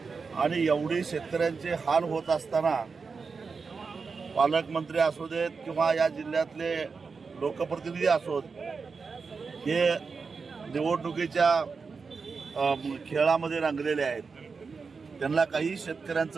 आणि एवढी शेतकऱ्यांचे हाल होत असताना पालकमंत्री असू देत किंवा या जिल्ह्यातले लोकप्रतिनिधी असोत, हे निवडणुकीच्या खेळामध्ये रंगलेले आहेत। त्यांना काही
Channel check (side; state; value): left; quieter; 4.9 dB